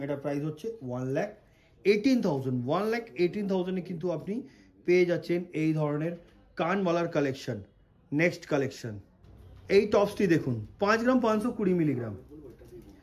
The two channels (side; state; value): both; identical; correlation 1.00